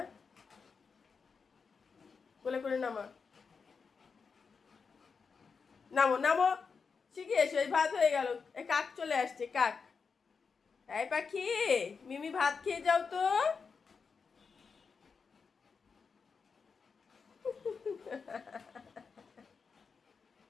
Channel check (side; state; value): right; quieter; 5.4 dB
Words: কোলে করে নামা। নামো নামো, শিখে এসো। এই ভাত হয়ে গেল। এই কাক চলে আসছে, কাক। এই পাখি, মিমি ভাত খেয়ে যাও তো।